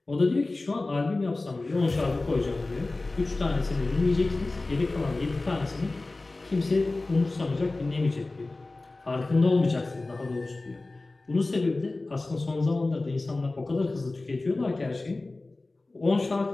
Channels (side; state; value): right; quieter; 3.2 dB